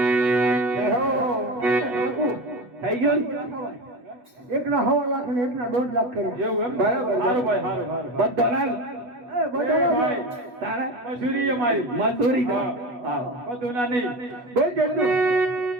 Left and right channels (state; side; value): late; left; 8.2 ms